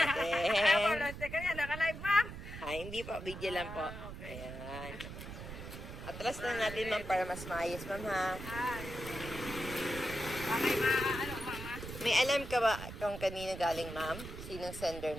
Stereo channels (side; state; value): right; noise; rumble, 10 dB below the sound